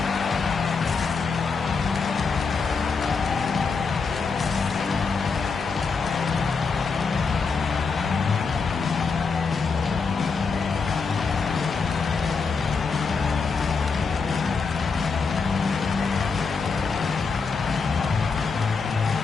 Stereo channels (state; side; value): quieter; right; 4.9 dB